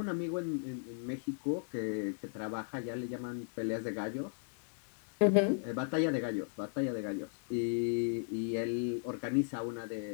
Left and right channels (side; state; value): right; silent; digital silence